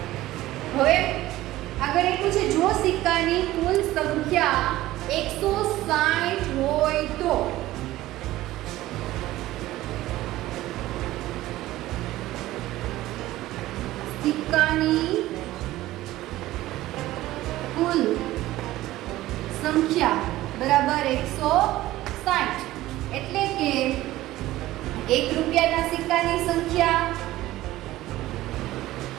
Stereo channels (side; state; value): left; quieter; 16.1 dB